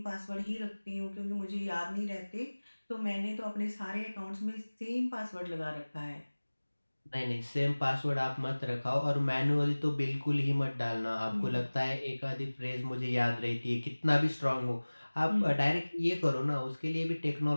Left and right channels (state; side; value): inverted; both; correlation -1.00